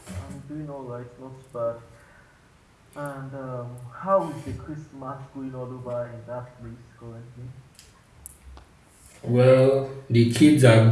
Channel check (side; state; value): both; identical; correlation 1.00